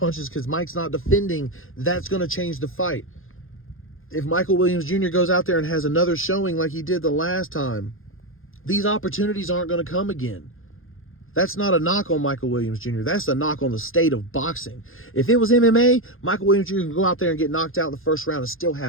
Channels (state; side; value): late; right; 0.60 ms